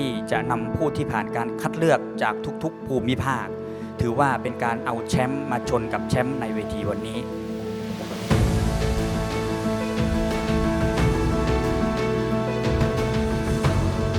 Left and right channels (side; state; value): both; identical; correlation 1.00